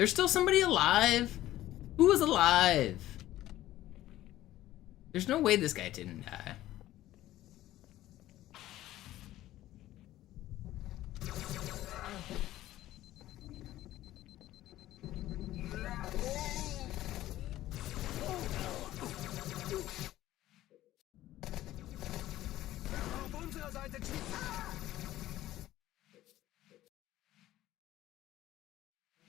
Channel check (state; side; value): quieter; right; 14.7 dB